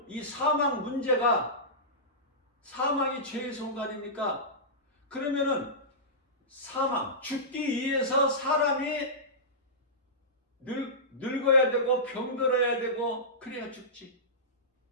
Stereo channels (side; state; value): both; normal; correlation -0.17